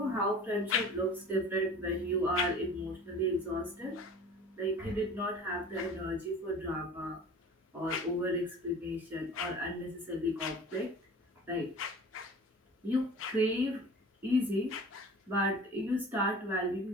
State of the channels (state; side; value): normal; both; correlation 0.41